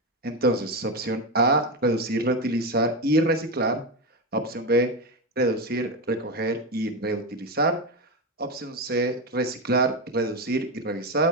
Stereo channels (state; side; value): normal; both; correlation 0.13